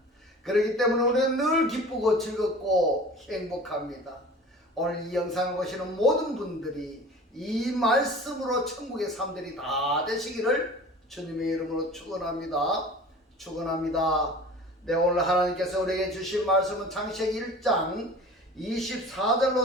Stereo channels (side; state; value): both; normal; correlation 0.41